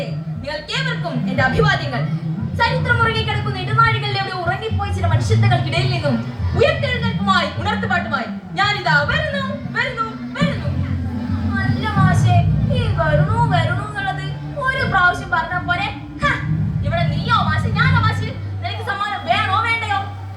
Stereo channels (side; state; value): both; identical; correlation 1.00